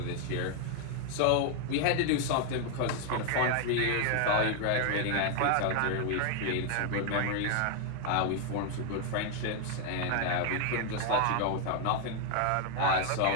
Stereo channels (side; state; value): both; different; correlation 0.00